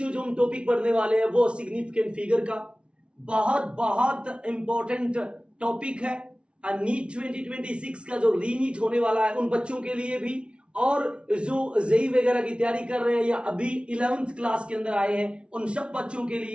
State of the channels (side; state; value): left; late; 0.058 ms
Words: जो हम टॉपिक पढ़ने वाले हैं वो सिग्निफिकेंट फिगर का बहुत बहुत इंपॉर्टेंट टॉपिक है। नीट 2026 का जो रीनीट होने वाला है उन बच्चों के लिए भी, और जो जेई वगैरह की तैयारी कर रहे हैं या अभी 11th क्लास के अंदर आए हैं उन सब बच्चों के